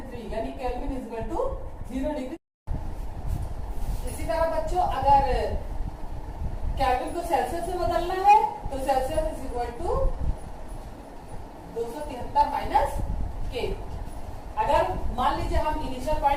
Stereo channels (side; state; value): both; identical; correlation 1.00